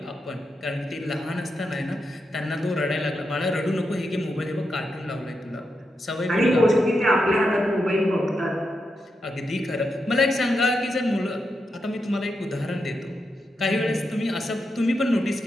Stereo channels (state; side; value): normal; both; correlation 0.85